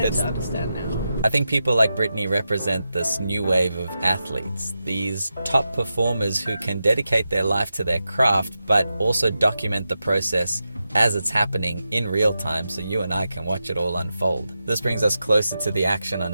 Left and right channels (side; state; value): both; inverted; correlation -0.90